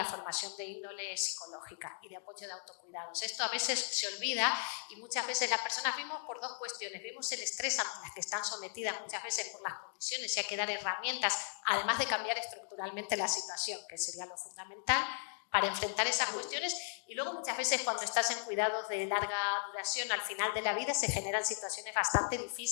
formación de índole psicológica y de apoyo de autocuidados. Esto a veces se olvida y muchas veces las personas vimos por dos cuestiones. Vimos el estrés a las que están sometidas muchas veces por las condiciones y hay que dar herramientas, además de cambiar estructuralmente la situación, que sería lo fundamental, para enfrentar esas cuestiones. Y luego muchas veces cuando estás en cuidados de larga duración al final de la vida se generan situaciones bastante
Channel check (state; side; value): silent; right; digital silence